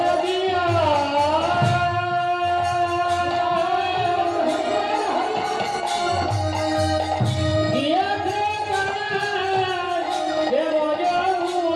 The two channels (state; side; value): identical; both; correlation 1.00